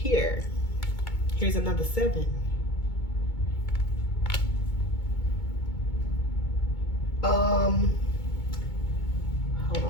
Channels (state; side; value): late; right; 2.2 ms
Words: Here's another 7. Hold